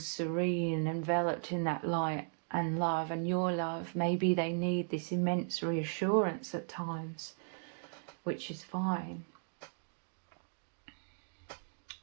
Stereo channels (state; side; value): silent; left; digital silence